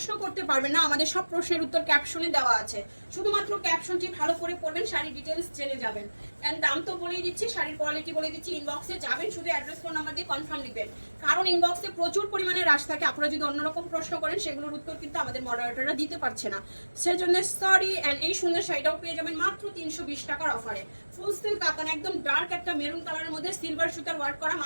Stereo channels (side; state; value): both; inverted; correlation -1.00